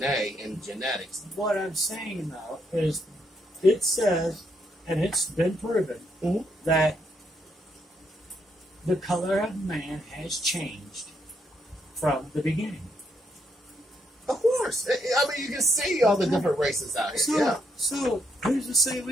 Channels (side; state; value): both; normal; correlation 0.75